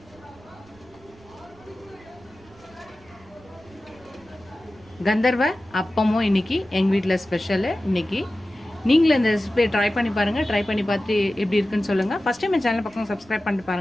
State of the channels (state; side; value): noise; right; rumble, 26 dB below the sound